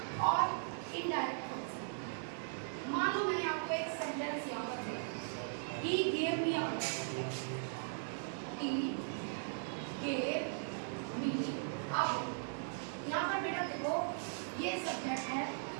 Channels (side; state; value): left; silent; 52 dB below the other